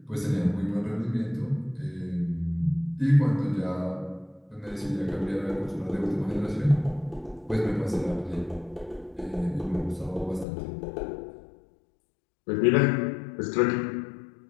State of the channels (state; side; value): drops out; right; at 10.5 s